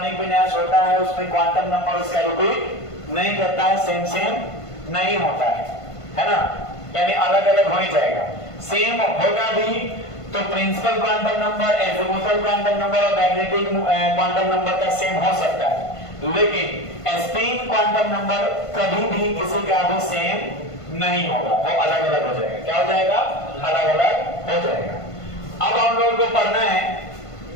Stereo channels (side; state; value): right; late; 1.5 ms